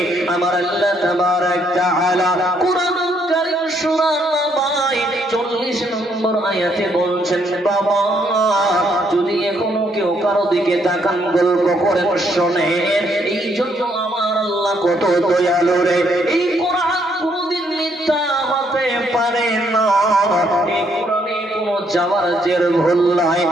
আমার আল্লাহ তাবারক তাআলা কুরআনুল কারীম সূরা নাবায় 40 নম্বর আয়াতে বলছেন, বাবা যদি এখনো কেউ কারো দিকে তাকান গল্প করেন শোনেন, এই জন্য আমার আল্লাহ কত দয়ালু রে। এই কোরআন কোনদিন মিথ্যা হতে পারে না, এই কোরআনে কোনো যাওয়ার জের ভুল নাই।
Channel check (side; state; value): both; normal; correlation 0.71